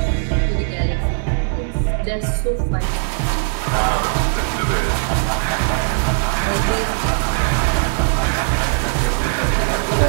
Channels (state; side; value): silent; left; digital silence